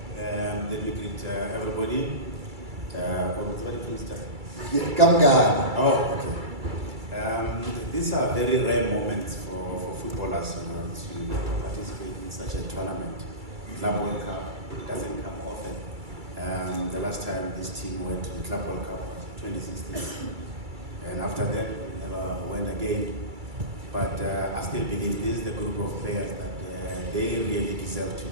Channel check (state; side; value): late; left; 2.3 ms